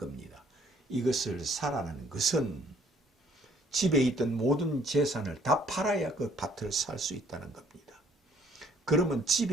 이것을 사라는 것은 집에 있던 모든 재산을 다 팔아야 그 밭을 살 수 있다는 겁니다. 그러면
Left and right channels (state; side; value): normal; both; correlation 0.62